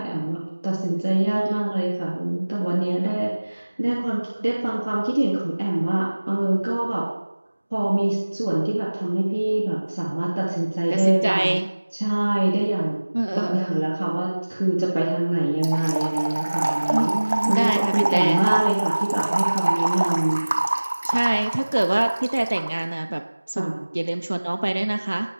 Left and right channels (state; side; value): inverted; both; correlation -1.00